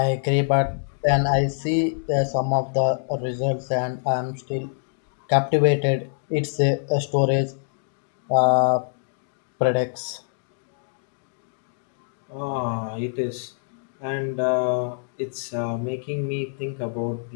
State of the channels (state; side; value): silent; right; digital silence